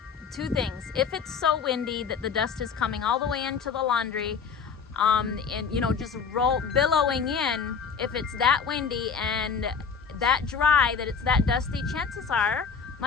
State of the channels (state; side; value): quieter; right; 6.1 dB